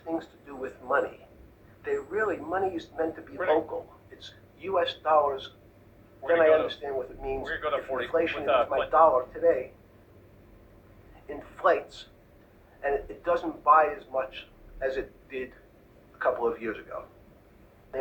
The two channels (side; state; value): both; identical; correlation 1.00